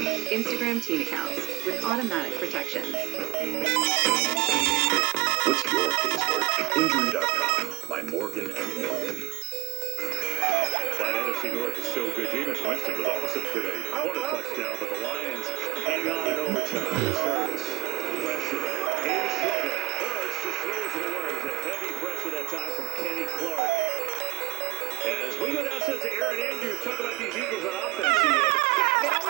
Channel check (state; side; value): quieter; left; 17.0 dB